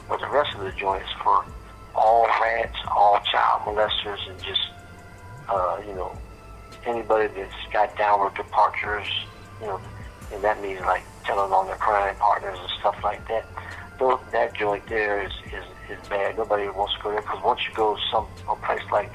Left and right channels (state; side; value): identical; both; correlation 1.00